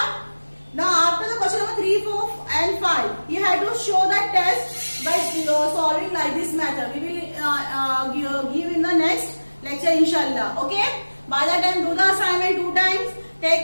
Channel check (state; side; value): inverted; both; correlation -1.00